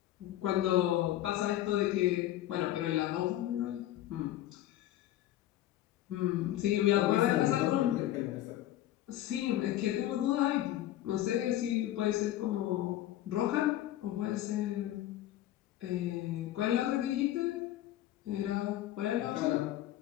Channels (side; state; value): right; quieter; 13.7 dB